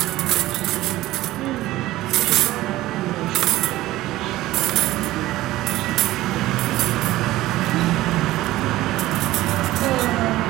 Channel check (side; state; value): left; quieter; 16.5 dB